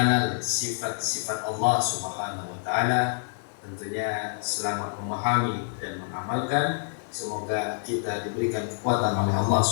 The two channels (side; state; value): right; silent; 60 dB below the other